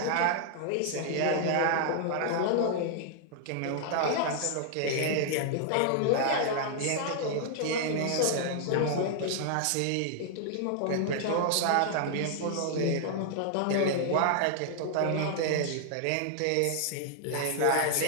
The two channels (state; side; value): different; both; correlation -0.01